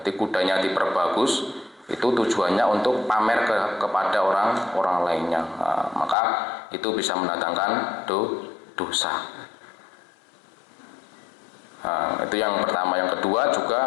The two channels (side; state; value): right; drops out; at 6.2 s